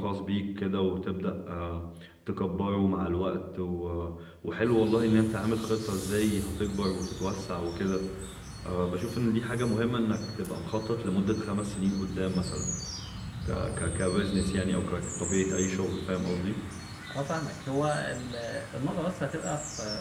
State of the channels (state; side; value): identical; both; correlation 1.00